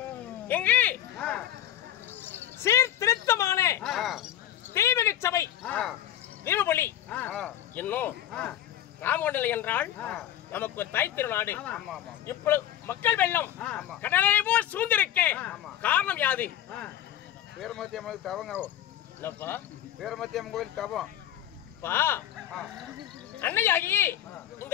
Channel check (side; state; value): right; quieter; 11.7 dB